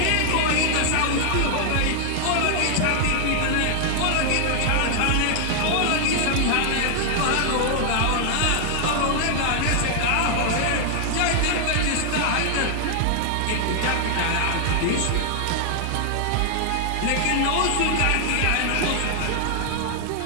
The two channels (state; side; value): different; both; correlation 0.00